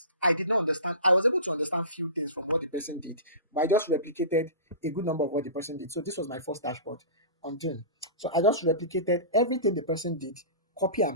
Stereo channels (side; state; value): both; inverted; correlation -0.33